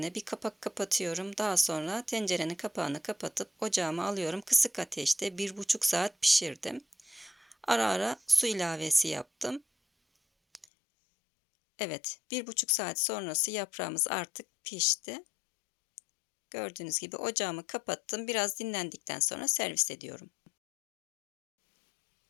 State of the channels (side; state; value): right; drops out; at 10.7 s